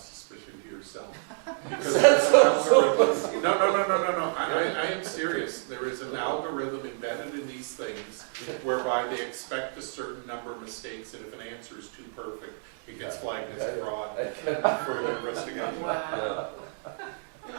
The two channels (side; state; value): left; silent; digital silence